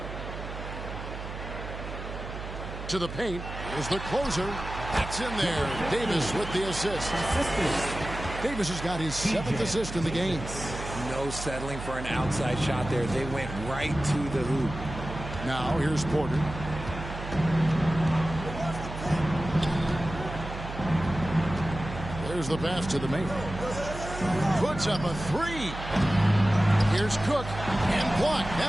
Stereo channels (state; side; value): noise; right; hum, 9 dB below the sound